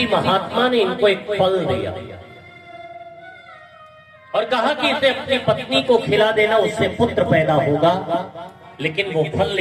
महात्मा ने इनको एक फल दिया और कहा कि इसे अपनी पत्नी को खिला देना, उससे पुत्र पैदा होगा। लेकिन वो फल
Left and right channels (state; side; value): identical; both; correlation 1.00